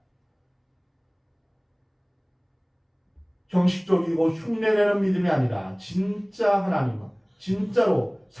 형식적이고 흉내내는 믿음이 아니라 진짜 하나님은 진짜로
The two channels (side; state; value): both; identical; correlation 1.00